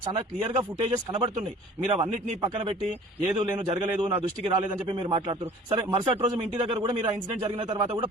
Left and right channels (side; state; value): both; normal; correlation 0.48